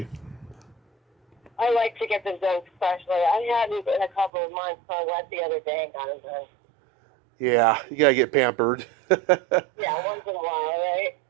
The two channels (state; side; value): drops out; left; at 4.3 s